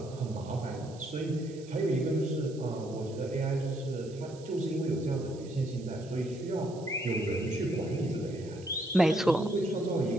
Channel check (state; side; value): noise; right; hiss, 22 dB below the sound